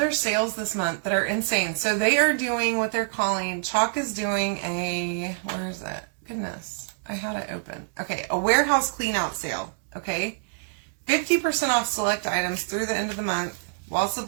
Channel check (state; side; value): silent; left; digital silence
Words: sales this month that are insane. So they are doing what they're calling, Chalk is doing a, where is that? Goodness, I had it open. Okay, a warehouse clean out sale, okay? 50% off select items through the end of the month while